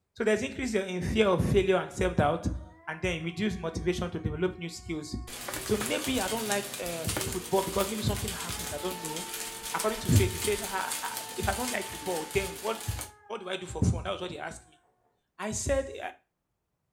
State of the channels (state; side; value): identical; both; correlation 1.00